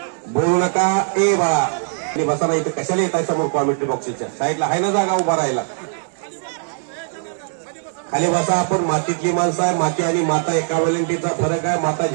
बोलू नका. ए बाळा आणि बसा नाही तर कशाला येत आहे समोर कॉमेंट्री बॉक्सच्या साईडला आहे ना जागा उभा राहायला. खाली बसा. आपण मातीतली माणसं आहे. माती आणि माता एका वेलेंटीचा फरक आहे. माता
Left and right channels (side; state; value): left; silent; 61 dB below the other